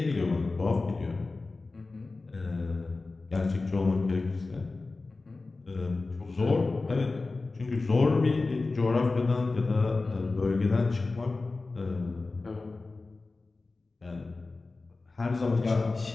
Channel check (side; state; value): right; quieter; 3.6 dB